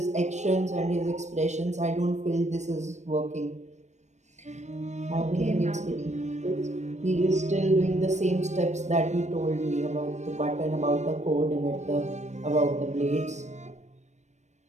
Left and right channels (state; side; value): late; left; 0.34 ms